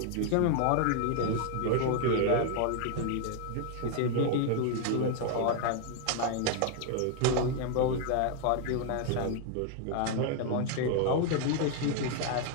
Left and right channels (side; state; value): both; different; correlation 0.00